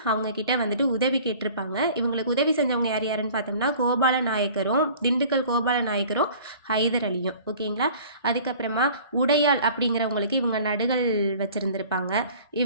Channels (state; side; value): inverted; both; correlation -0.47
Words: அவங்க கிட்ட வந்துட்டு உதவி கேட்டிருப்பாங்க. இவங்களுக்கு உதவி செஞ்சவங்க யார் யாருன்னு பார்த்தோம்னா கோபால நாயக்கரும், திண்டுக்கல் கோபால நாயக்கரும், ஹைதர் அலியும். ஓகேங்களா? அதுக்கப்புறமா உடையாள் அப்படிங்கிறவங்களுக்கு இவங்க நடுகள் வச்சுருந்துருப்பாங்க.